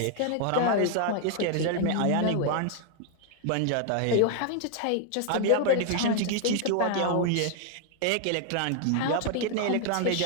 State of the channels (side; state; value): both; different; correlation 0.00